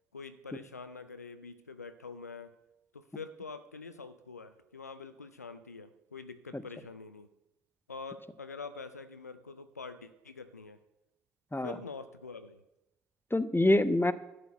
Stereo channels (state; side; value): normal; both; correlation 0.80